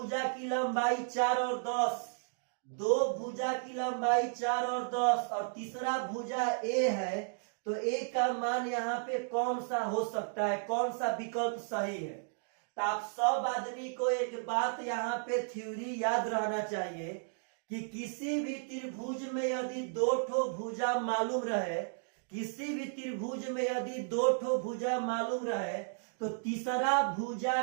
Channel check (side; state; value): left; silent; digital silence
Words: की लंबाई 4 और 10, 2 भुजा की लंबाई 4 और 10 और तीसरा भुजा A है, तो A का मान यहाँ पे कौन सा हो सकता है, कौन सा विकल्प सही है। तो आप सब आदमी को एक बात यहाँ पे थ्योरी याद रहना चाहिए कि किसी भी त्रिभुज में यदि 2 ठो भुजा मालूम रहे, किसी भी त्रिभुज में यदि 2 ठो भुजा मालूम रहे, तो तीसरा भुजा